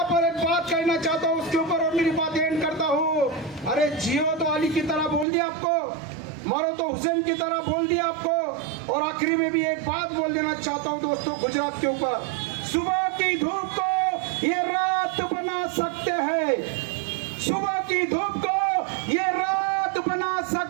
पर एक बात कहना चाहता हूँ उसके ऊपर और मेरी बात एंड करता हूँ। अरे जियो तो अली की तरह बोल दिया आपको, मरो तो हुसैन की तरह बोल दिया आपको। और आखिरी में भी एक बात बोल देना चाहता हूँ दोस्तों गुजरात के ऊपर, सुबह की धूप को ये रात बना सकते हैं, सुबह की धूप को ये रात बना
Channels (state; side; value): drops out; left; at 5.2 s